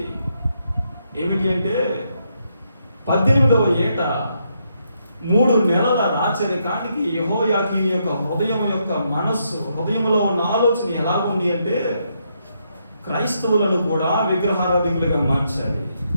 ఏమిటి అంటే 18వ ఏట 3 నెలల రాచరికానికి యెహోయాకీను యొక్క హృదయం యొక్క మనస్సు, హృదయంలో ఉన్న ఆలోచన ఎలా ఉంది అంటే క్రైస్తవులను కూడా విగ్రహారాధికులుగా మార్చాలి,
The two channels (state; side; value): inverted; both; correlation -0.78